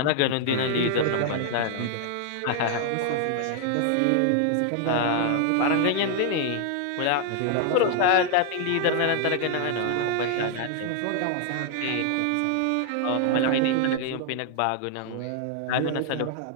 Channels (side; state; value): both; different; correlation 0.00